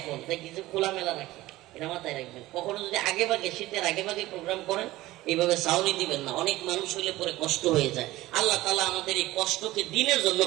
দেখি যে খোলামেলা রাখি, এটা মাথায় রাখবেন। কখনো যদি আগে ভাগে শীতের আগে ভাগে প্রোগ্রাম করেন, এইভাবে সাউনি দিবেন না, অনেক মানুষ হইলে পরে কষ্ট হয়ে যায়। আল্লাহ তাআলা আমাদের এই কষ্টকে দিনের জন্য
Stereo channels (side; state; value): left; quieter; 17.4 dB